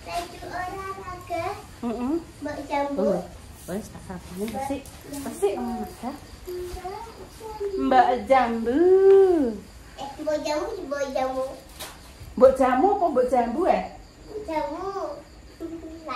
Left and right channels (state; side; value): identical; both; correlation 1.00